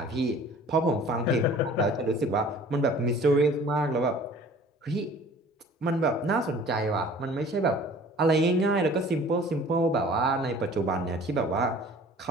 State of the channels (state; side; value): normal; both; correlation 0.48